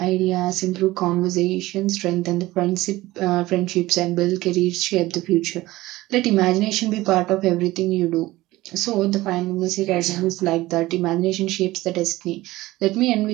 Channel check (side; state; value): left; quieter; 18.1 dB